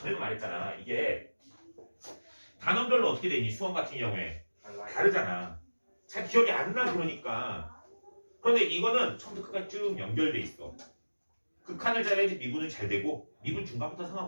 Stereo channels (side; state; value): both; inverted; correlation -1.00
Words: 말했잖아. 이게 단원별로 어떻게 되니? 수원 같은 경우에 다르잖아. 잘 기억이 안 나 그러니까. 그런데 이거는 처음부터 끝까지 쭉 연결돼 있어. 극한을 잘해야지 미분은 잘 되고 미분 중간부터